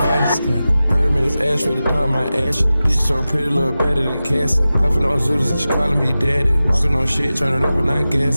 Hermes ash for the dawn, my ash. Bitch so pretty, look better than Cassie. Puffin' on Zooters and she calling me daddy. Walking on shit, turn it up and not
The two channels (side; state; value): both; inverted; correlation -0.95